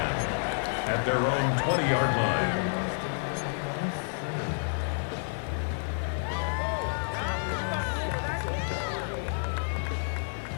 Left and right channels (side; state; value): right; silent; digital silence